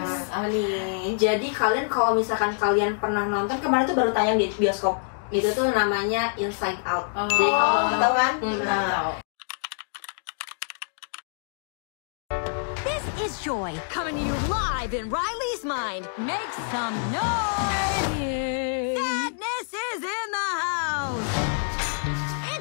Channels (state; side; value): silent; right; digital silence